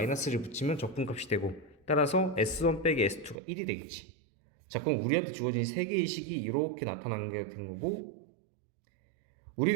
붙이면 적분값이 되고, 따라서 S1 빼기 S2가 1이 되겠지. 자, 그럼 우리한테 주어진 3개의 식이 이렇게 나타나는 게 된 거고,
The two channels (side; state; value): left; drops out; at 3.4 s